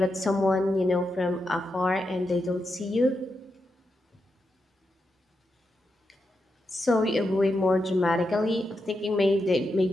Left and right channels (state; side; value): normal; both; correlation 0.86